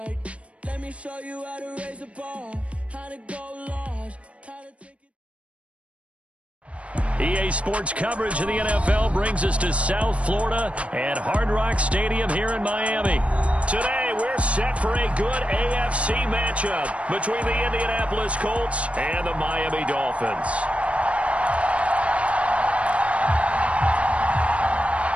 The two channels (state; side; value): late; left; 0.063 ms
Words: Let me show you how to raise a bar, how to go large, how to take it. EA Sports coverage of the NFL brings us to South Florida at Hard Rock Stadium here in Miami. Today, we're set for a good AFC matchup between the Indianapolis Colts and the Miami Dolphins.